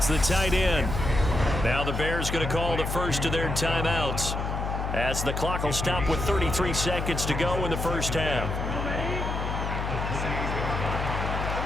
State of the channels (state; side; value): noise; left; hum, 3 dB below the sound